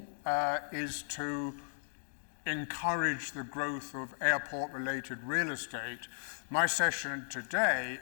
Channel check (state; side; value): silent; right; digital silence